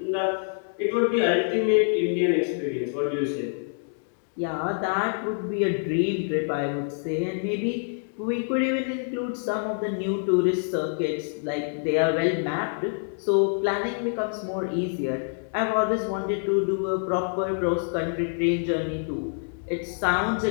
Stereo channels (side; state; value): right; silent; digital silence